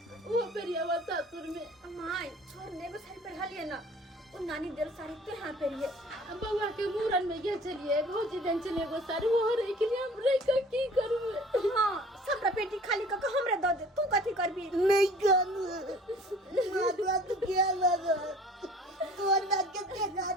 वो पेरिया वा सासुर में माय छोड़ ने बस साड़ी पहना लिए ना वो नानी दिल साड़ी के हाथ पहनिए बउआ के मूरन में गए चलिए भौजी दिन चले वो साड़ी वो रही के लिए हम रह का की करूं। हां सबरा पेटी खाली क के हमरे दे दे तू कथी करबी नहीं जानू माता तू क्या लगा तू ना कितने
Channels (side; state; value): both; normal; correlation 0.49